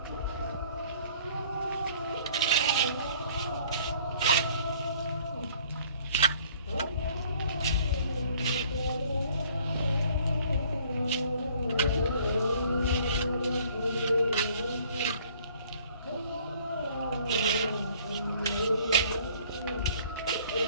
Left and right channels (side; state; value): both; inverted; correlation -0.56